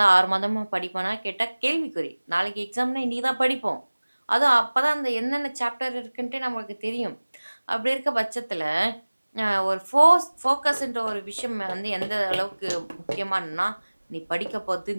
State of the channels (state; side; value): inverted; both; correlation -1.00